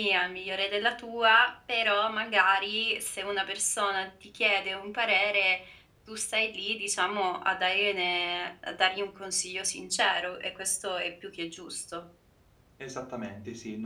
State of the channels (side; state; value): both; identical; correlation 1.00